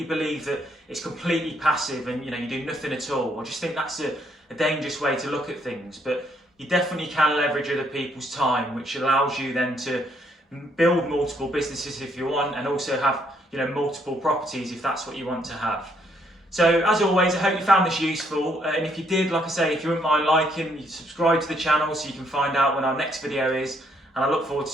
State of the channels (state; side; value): normal; both; correlation 0.71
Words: believe that it's completely passive and you do nothing at all. I just think that's a dangerous way to look at things, but you definitely can leverage other people's time, which allows you then to build multiple businesses if you want, and also have multiple properties if that's what you want to have. So as always, I hope you found this useful, and if you did, like I say, if you wouldn't mind liking, subscribe to the channel so you can find out when our next video is, and I look forward to